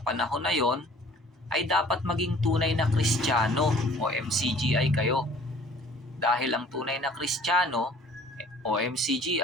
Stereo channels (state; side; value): normal; both; correlation 0.52